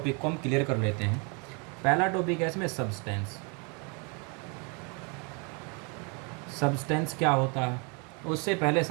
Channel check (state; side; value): quieter; left; 33.2 dB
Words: को हम क्लियर कर लेते हैं। पहला टॉपिक है इसमें सब्सटेंस। सब्सटेंस क्या होता है उससे पहले